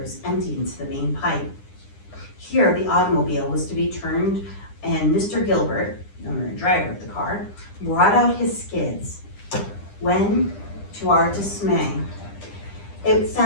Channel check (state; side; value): late; right; 10 ms